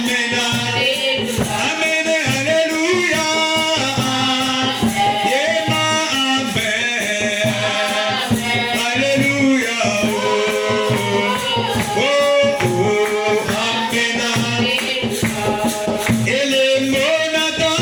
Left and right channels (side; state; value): both; identical; correlation 1.00